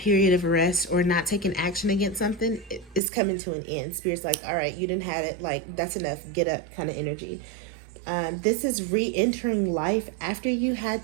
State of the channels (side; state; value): left; drops out; at 3.0 s